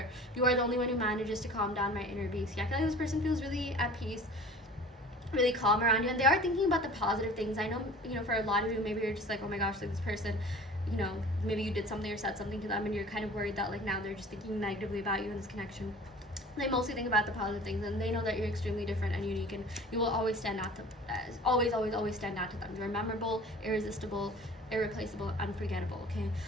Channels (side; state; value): both; normal; correlation 0.43